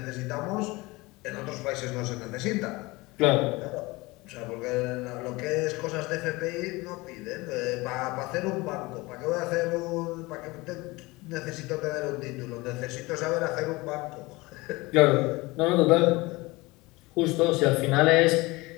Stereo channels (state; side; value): quieter; right; 22.5 dB